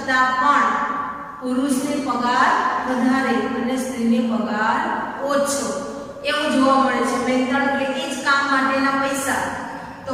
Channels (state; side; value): identical; both; correlation 1.00